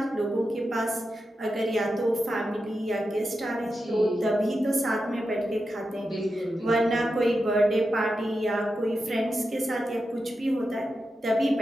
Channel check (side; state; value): both; normal; correlation 0.89